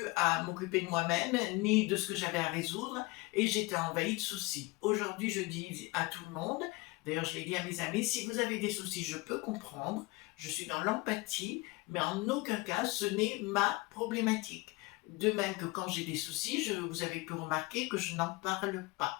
à m'occuper de moi-même ni de ce que j'avais à résoudre et j'étais envahie de soucis. Aujourd'hui, je dis à tout le monde, d'ailleurs je l'ai dit à mes amis, si vous avez des soucis, je peux comprendre, je suis dans l'empathie, mais en aucun cas ce n'est ma problématique. De même que quand j'ai des soucis, vous avez pu remarquer que je n'en parle pas.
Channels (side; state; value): right; quieter; 23.6 dB